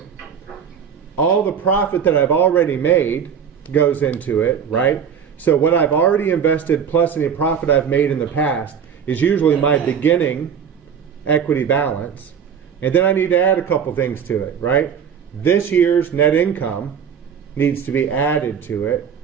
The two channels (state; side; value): quieter; left; 7.5 dB